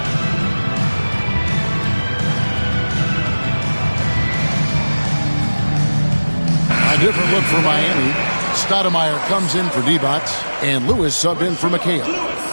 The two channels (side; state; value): both; inverted; correlation -1.00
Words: A different look for Miami. Stoudemire comes in for Divac, and Lewis subbed in for McHale.